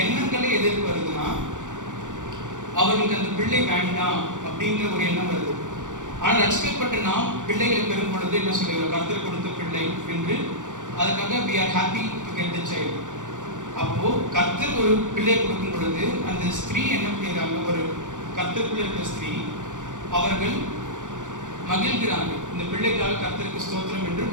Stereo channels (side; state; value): left; late; 0.86 ms